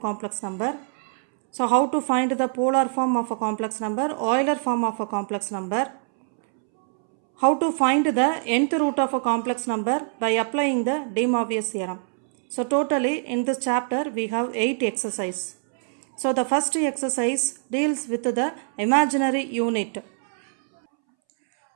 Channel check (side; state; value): left; silent; 63 dB below the other